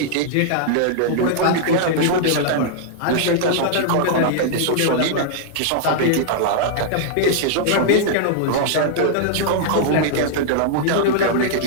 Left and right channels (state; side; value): different; both; correlation -0.01